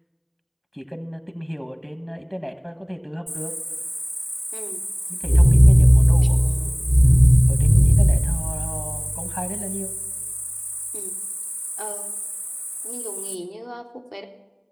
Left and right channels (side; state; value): both; identical; correlation 1.00